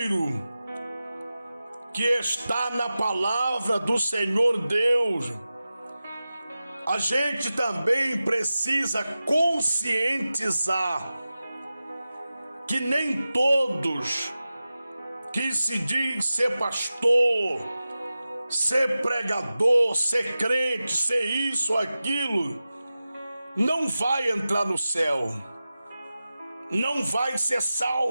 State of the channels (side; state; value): both; inverted; correlation -0.94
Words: que está na palavra do Senhor Deus. A gente também precisa conscientizar que nem todos que se diz ser pastor, ser pregador, ser crente, ser isso, aquilo, não vai entrar no céu, não vai ser